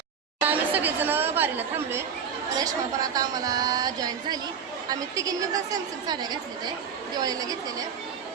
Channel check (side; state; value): left; quieter; 7.0 dB